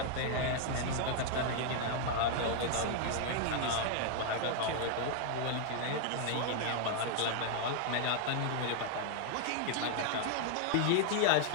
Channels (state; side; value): different; both; correlation 0.00